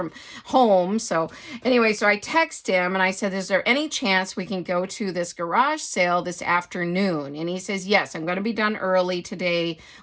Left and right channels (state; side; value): identical; both; correlation 1.00